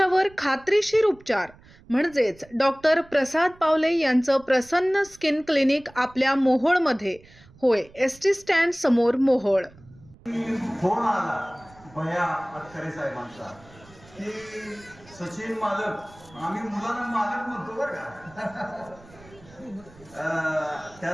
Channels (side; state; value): right; noise; rumble, 24 dB below the sound